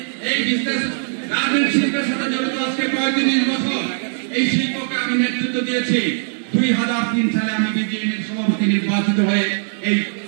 এই বিজনেস গার্মেন্ট শিল্পের সাথে জড়িত আজকে 35 বছর। এই শিল্পকে আমি নেতৃত্ব দিয়েছি। 2003 সালে আমি বিজিএমের সভাপতি নির্বাচিত হয়ে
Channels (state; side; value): silent; left; digital silence